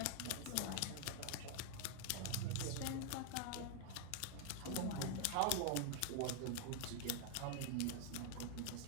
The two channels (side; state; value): both; different; correlation 0.00